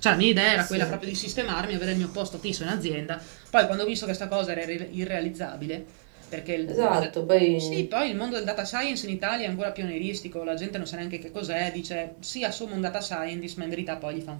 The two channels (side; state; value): left; silent; 59 dB below the other